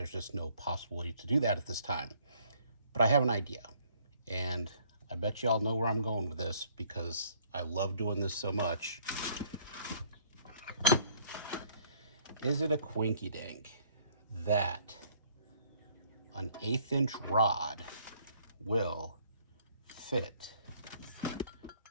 just no possibility to do that at this time, but I have an idea, and I bet you all know where I'm going with this because I love doing this so much. Is it a quinky dink that an 1/8 inch rod will fit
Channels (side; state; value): both; inverted; correlation -0.61